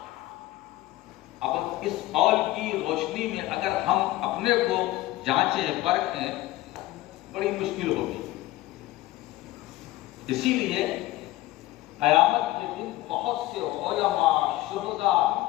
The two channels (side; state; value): right; quieter; 16.8 dB